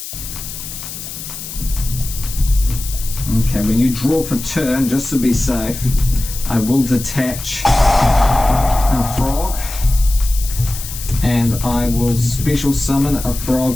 Okay, when you draw for turn, just to be safe, I will detach a frog, and I will special summon a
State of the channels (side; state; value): left; noise; hiss, 10 dB below the sound